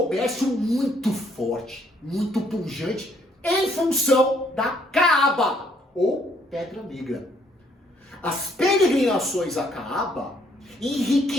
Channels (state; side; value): normal; both; correlation 0.67